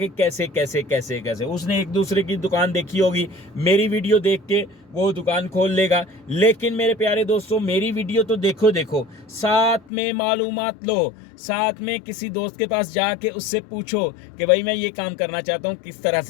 कैसे कैसे कैसे कैसे। उसने एक दूसरे की दुकान देखी होगी, मेरी वीडियो देख के वो दुकान खोल लेगा। लेकिन मेरे प्यारे दोस्तों, मेरी वीडियो तो देखो देखो, साथ में मालूमात लो, साथ में किसी दोस्त के पास जाके उससे पूछो कि भाई मैं ये काम करना चाहता हूँ, किस तरह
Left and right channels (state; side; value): drops out; right; at 9.8 s